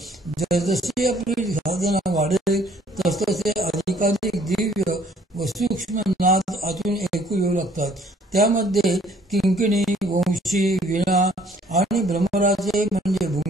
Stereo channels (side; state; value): both; normal; correlation 0.60